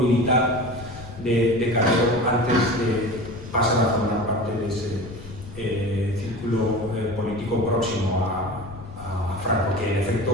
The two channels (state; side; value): noise; left; rumble, 14 dB below the sound